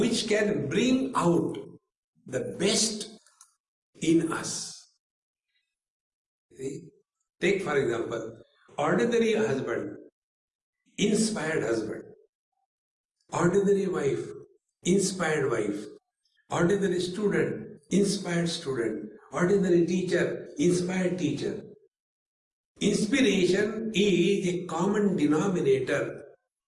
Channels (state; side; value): identical; both; correlation 1.00